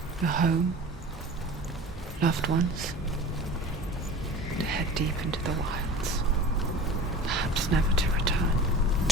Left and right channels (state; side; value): normal; both; correlation 0.39